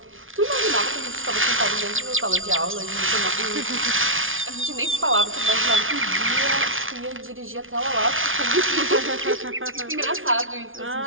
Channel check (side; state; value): left; late; 0.58 ms